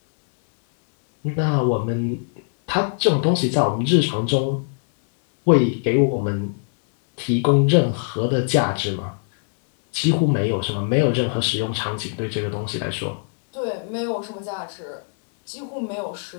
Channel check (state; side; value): silent; right; 63 dB below the other